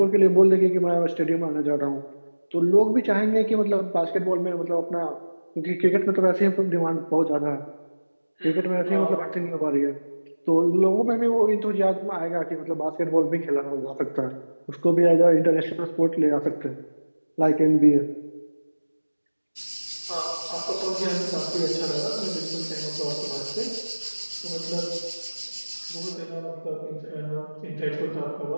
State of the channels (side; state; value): both; inverted; correlation -1.00